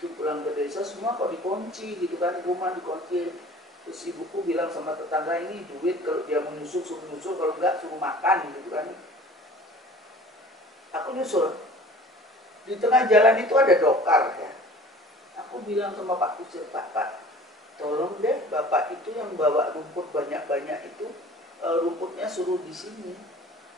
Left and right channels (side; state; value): both; normal; correlation 0.46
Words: pulang ke desa semua kok dikunci gitu kan, rumah dikunci. Terus ibuku bilang sama tetangga, ini duit, kalau dia mau nyusul suruh nyusul, kalau enggak suruh makan gitu kan. Aku nyusul. Di tengah jalan itu ada dokar ya. Aku bilang sama Pak Kusir, Pak, tolong deh Bapak itu yang bawa rumput banyak-banyak itu, rumputnya suruh di sini.